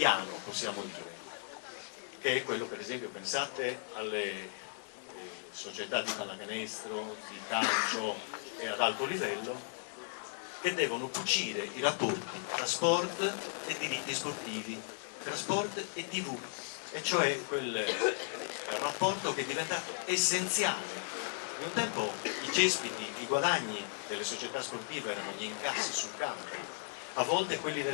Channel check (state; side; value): silent; right; digital silence